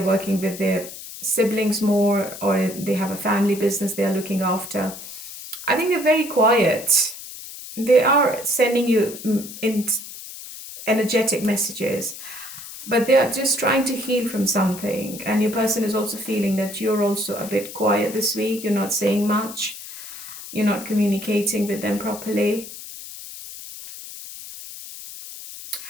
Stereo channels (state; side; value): noise; left; hiss, 12 dB below the sound